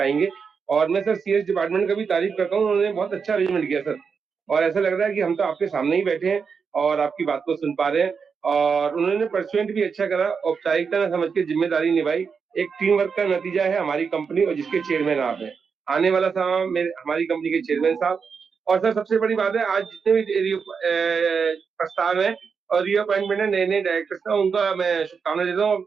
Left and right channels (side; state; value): left; quieter; 5.8 dB